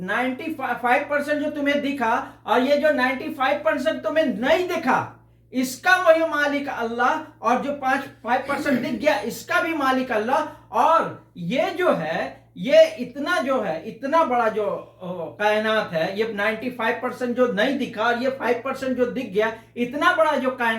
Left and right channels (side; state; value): both; identical; correlation 1.00